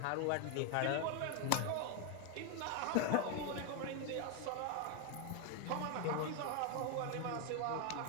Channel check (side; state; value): both; different; correlation 0.01